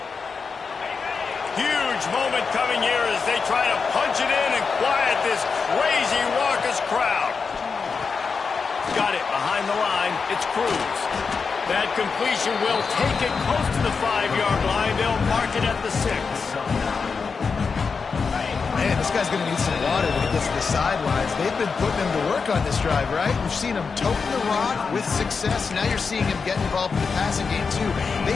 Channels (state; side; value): quieter; right; 5.2 dB